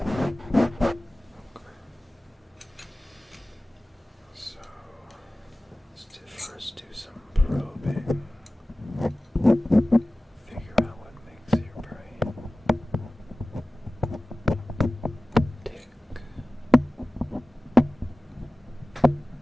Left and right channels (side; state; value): both; normal; correlation 0.97